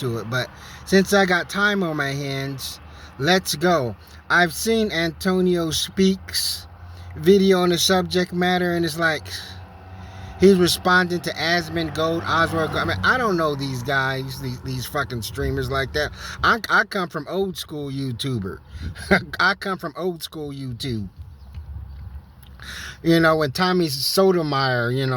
it. But since I got time on my hands, let's go. I've seen Antonio Speaks video on the subject matter, and it's like he's responding to Asmund Gold, Oswald Gold. I mean, I don't know these guys, these fucking streamers like that. I come from old school YouTuber. I come from old school YouTube. You know, when Tommy Sotomayor, you know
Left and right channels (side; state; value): both; identical; correlation 1.00